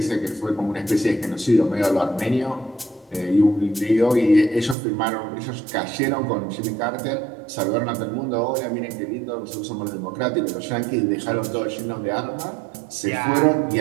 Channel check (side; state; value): left; drops out; at 4.8 s